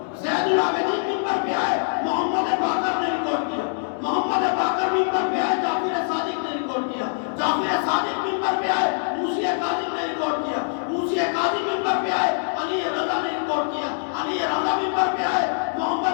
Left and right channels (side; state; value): right; silent; 59 dB below the other